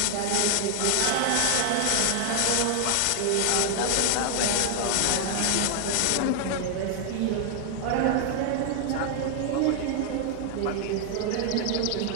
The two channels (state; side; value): different; both; correlation 0.00